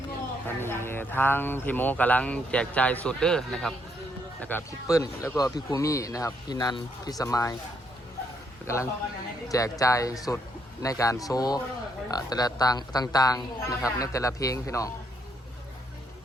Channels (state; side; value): normal; both; correlation 0.74